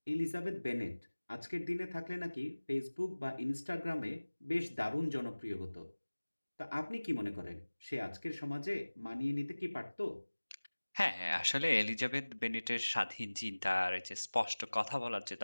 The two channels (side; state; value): both; inverted; correlation -1.00